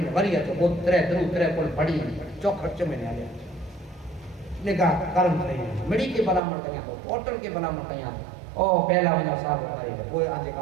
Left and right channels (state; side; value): drops out; left; at 6.4 s